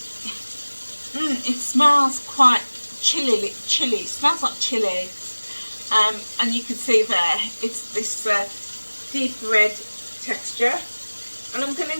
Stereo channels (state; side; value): inverted; both; correlation -1.00